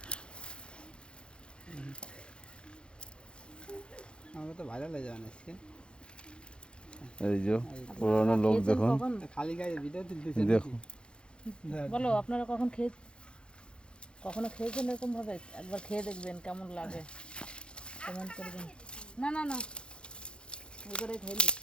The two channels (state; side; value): late; right; 0.053 ms